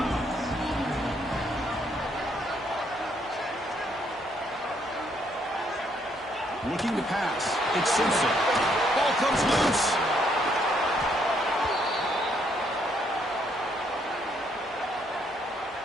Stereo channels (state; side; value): normal; both; correlation 0.71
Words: Looking to pass. It's Simpson. Ball comes loose.